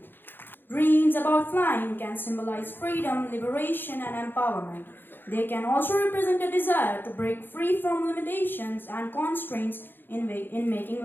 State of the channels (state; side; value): late; right; 0.097 ms